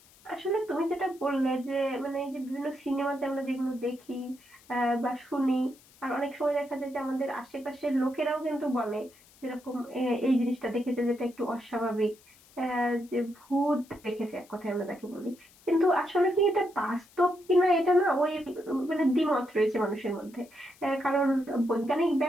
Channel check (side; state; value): left; noise; hiss, 27 dB below the sound